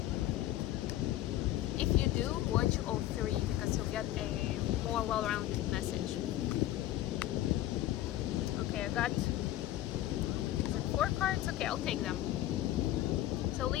if you do, watch all three because you'll get a more well-rounded message. Okay, I got 4 cards. Okay, I'll take them. So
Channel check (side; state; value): right; quieter; 14.1 dB